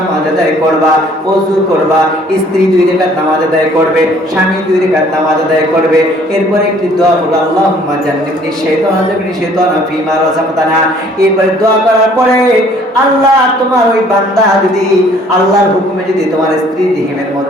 আদায় করবা, ওযু করবা, স্ত্রী 2 রাকাত নামাজ আদায় করবে, স্বামী 2 রাকাত নামাজ আদায় করবে। এরপরে একটি দোয়া হলো, আল্লাহুম্মা জান্নিবনি শাইতানা জান্নিবনি শাইতানা ফীমা রাযাকতানা। এরপরে দোয়া করার পরে, আল্লাহ, তোমার ওই বান্দা যদি আল্লাহর হুকুমে যদি তোমার স্ত্রীর রহিমের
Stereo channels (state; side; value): normal; both; correlation 0.58